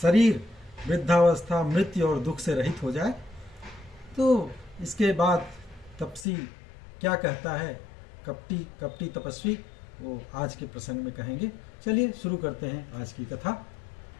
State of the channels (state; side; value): drops out; right; at 6.2 s